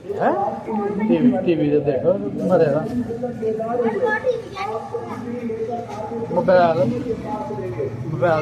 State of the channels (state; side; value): identical; both; correlation 1.00